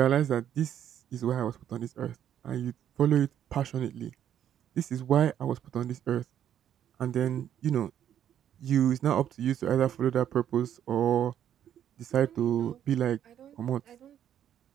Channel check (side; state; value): left; quieter; 10.1 dB